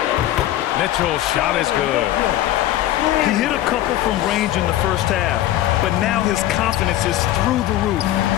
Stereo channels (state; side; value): quieter; right; 13.8 dB